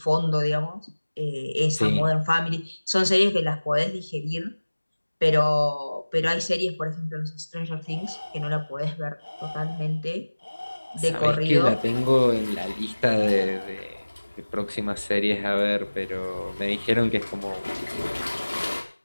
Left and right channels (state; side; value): inverted; both; correlation -1.00